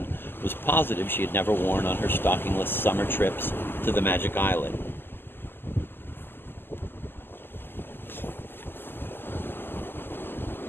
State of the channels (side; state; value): right; late; 0.099 ms